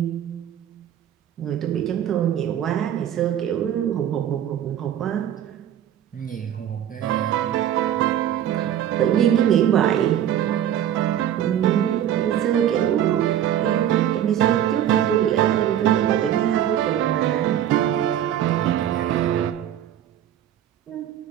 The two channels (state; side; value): quieter; left; 10.6 dB